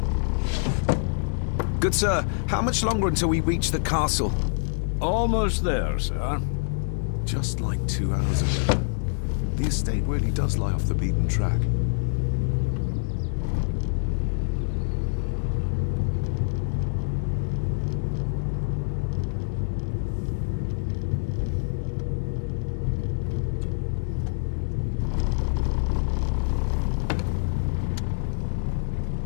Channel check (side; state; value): right; silent; digital silence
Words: Good sir, how much longer until we reach the castle? Almost there, sir. Just like 2 hours ago. The estate really does lie off the beaten track.